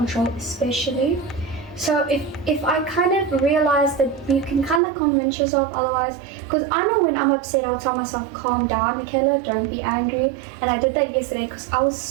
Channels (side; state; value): left; drops out; at 4.8 s